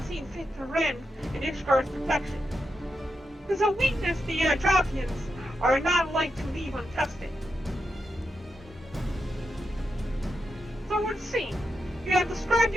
seen fit to rend in Ishgar's protection. It is a weakness the Dravians are not like to leave untested. So it would seem, you have described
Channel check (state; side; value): normal; both; correlation 0.86